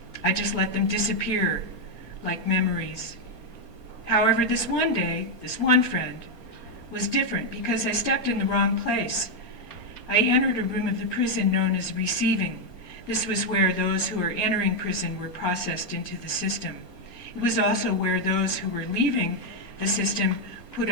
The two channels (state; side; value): late; left; 4.3 ms